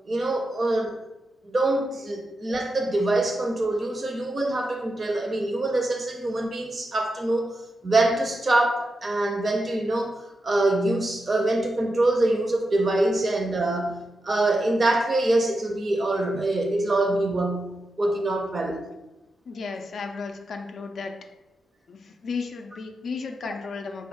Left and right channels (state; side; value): normal; both; correlation 0.88